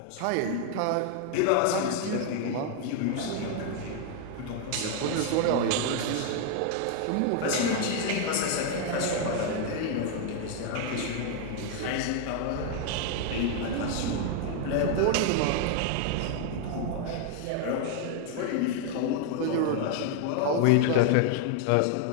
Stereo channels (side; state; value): both; different; correlation 0.00